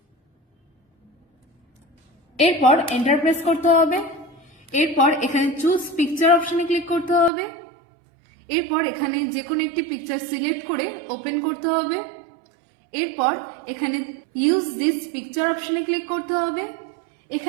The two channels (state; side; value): drops out; left; at 7.3 s